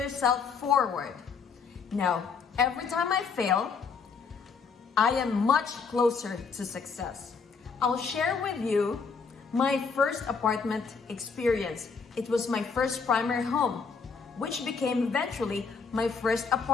forward. Now, every time I fail, I am much closer to success. I'll share with you my first apartment experience. It was my first primary home, which became eventually my first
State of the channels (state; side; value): quieter; right; 5.3 dB